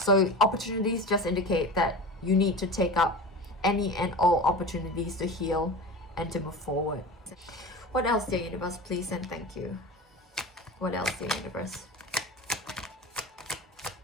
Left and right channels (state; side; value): normal; both; correlation 0.31